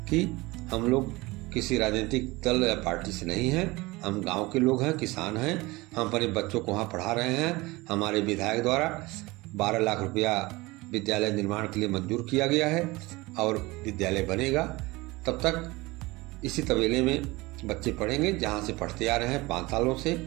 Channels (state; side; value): quieter; left; 21.9 dB